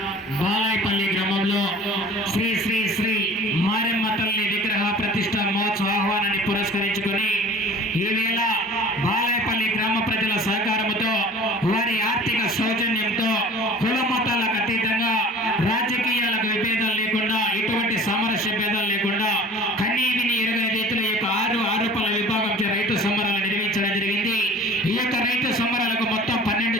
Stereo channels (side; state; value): both; normal; correlation 0.44